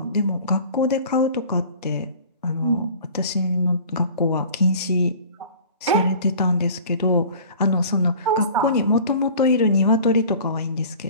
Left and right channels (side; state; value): both; inverted; correlation -0.43